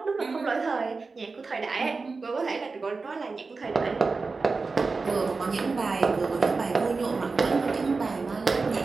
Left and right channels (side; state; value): left; quieter; 4.1 dB